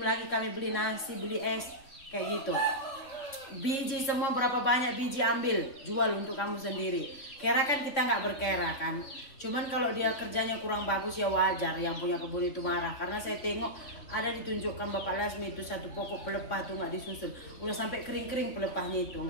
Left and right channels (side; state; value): right; late; 3.6 ms